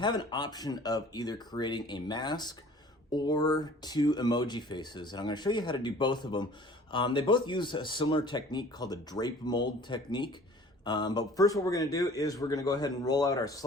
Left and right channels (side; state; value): both; normal; correlation 0.49